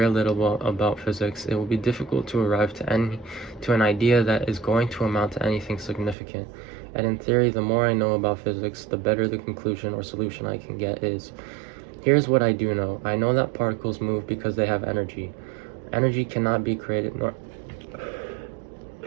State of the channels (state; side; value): drops out; left; at 6.2 s